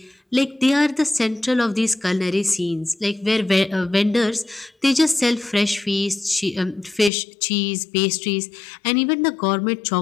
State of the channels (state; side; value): drops out; right; at 7.1 s